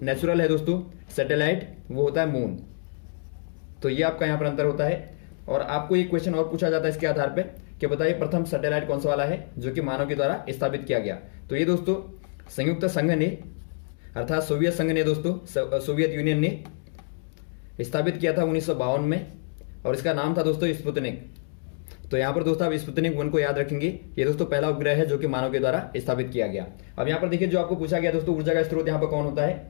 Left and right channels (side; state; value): right; silent; digital silence